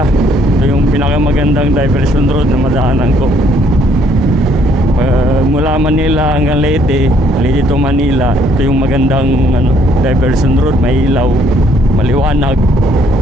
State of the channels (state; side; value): normal; both; correlation 0.65